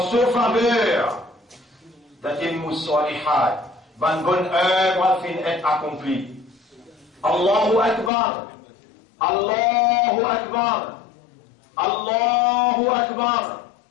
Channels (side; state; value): right; drops out; at 8.1 s